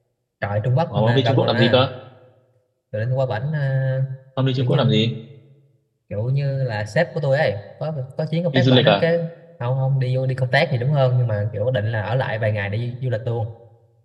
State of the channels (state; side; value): identical; both; correlation 1.00